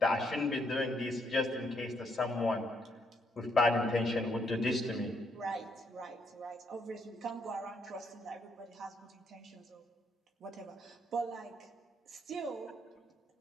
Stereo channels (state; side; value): normal; both; correlation 0.74